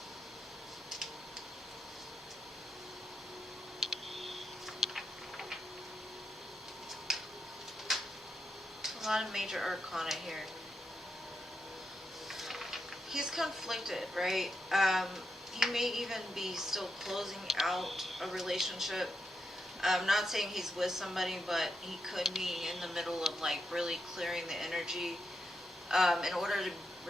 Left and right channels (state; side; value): normal; both; correlation 0.85